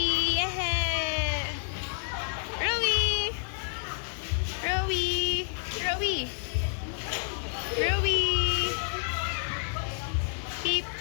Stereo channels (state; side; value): silent; right; 57 dB below the other